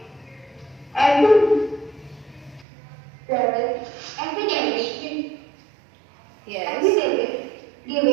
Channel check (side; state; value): left; drops out; at 2.7 s